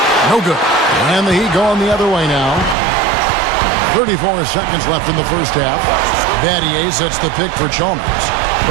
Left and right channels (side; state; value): left; drops out; at 2.8 s